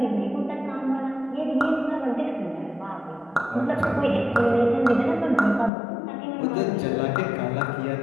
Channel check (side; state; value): right; drops out; at 5.7 s